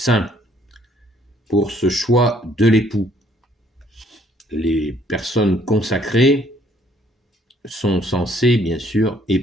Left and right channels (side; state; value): both; normal; correlation 0.64